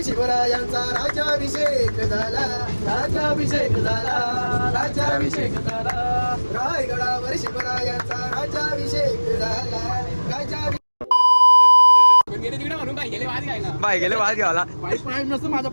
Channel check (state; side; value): inverted; both; correlation -1.00